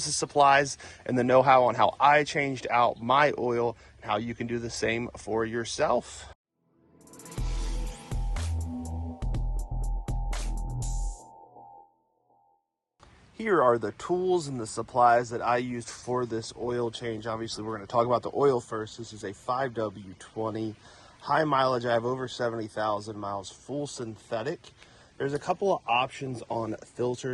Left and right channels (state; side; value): identical; both; correlation 1.00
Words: the supplies, and the know-how on how I changed out my oil and how you can do the same for yourself. Here are the tools and the supplies that I used for this oil change. Obviously, we're going to talk about the oil first. This is a 5W20 high mileage. I have over 70,000 miles, full synthetic. There's a couple of options on